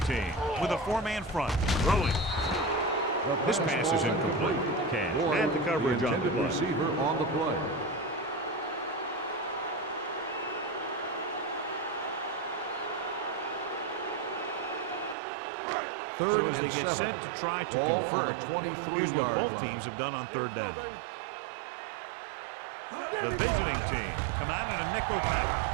team with a 4-man front. Throwing. This pass is incomplete. Cash had the coverage on the play. Receiver on the play. So as they get set to try to convert, here's what both teams have done on 3rd down. The visiting team come out in a nickel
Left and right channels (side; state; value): left; drops out; at 15.2 s